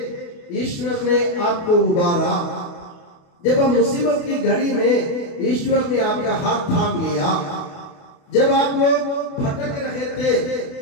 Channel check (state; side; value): late; right; 29 ms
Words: ईश्वर ने आपको उबारा। जब आप मुसीबत की घड़ी में, ईश्वर ने आपका हाथ थाम लिया। जब आप लोग भटक रहे थे,